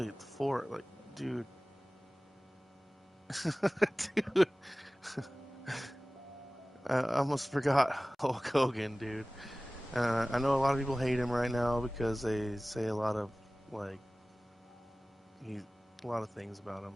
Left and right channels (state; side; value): normal; both; correlation 0.98